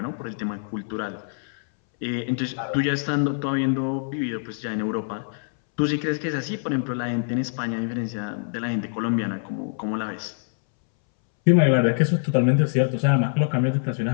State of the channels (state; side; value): silent; right; 62 dB below the other